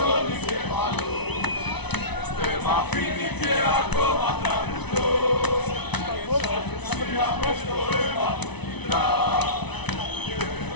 εγκέφαλο, δεν μ' αφήνει και ακόμα τραγουδώ. Σιγά μες το αίμα μου κυλά και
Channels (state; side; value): late; right; 0.99 ms